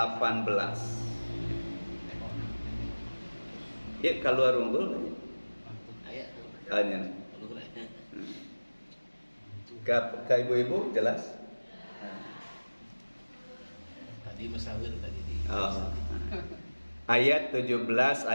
Ya, keluar unggul ayat. Ka ibu-ibu jelas? Tadi musawir tadi di. Oh. Ayat 17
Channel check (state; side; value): inverted; both; correlation -1.00